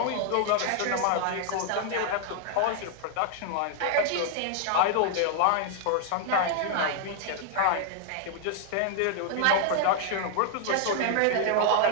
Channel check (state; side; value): different; both; correlation 0.00